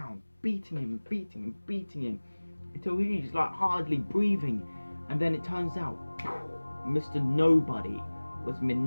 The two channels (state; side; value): inverted; both; correlation -1.00